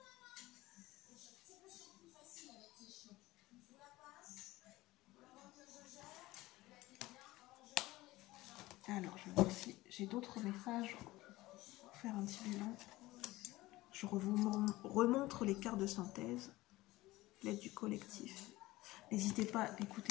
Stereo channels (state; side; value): quieter; right; 18.5 dB